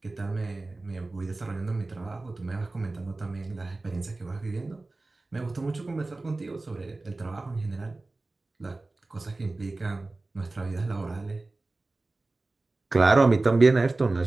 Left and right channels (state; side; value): quieter; left; 3.2 dB